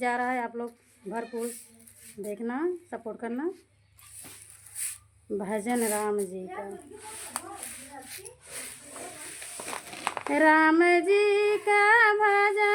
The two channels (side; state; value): both; identical; correlation 1.00